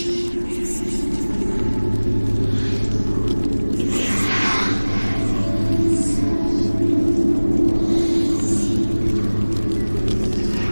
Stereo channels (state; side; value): inverted; both; correlation -1.00